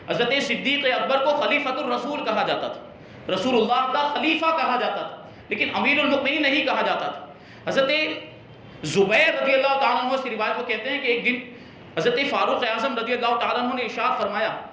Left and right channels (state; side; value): identical; both; correlation 1.00